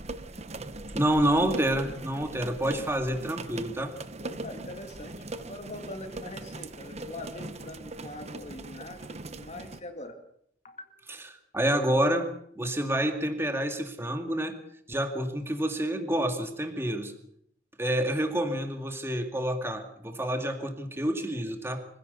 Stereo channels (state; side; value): normal; both; correlation 0.69